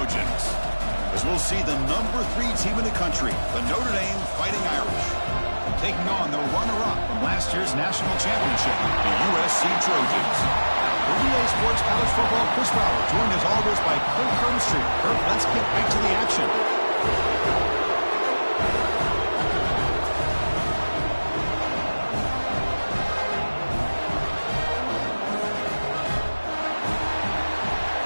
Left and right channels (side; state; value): both; inverted; correlation -1.00